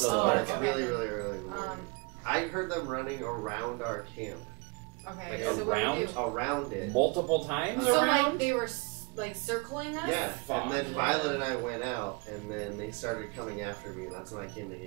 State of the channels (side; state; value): left; quieter; 29.1 dB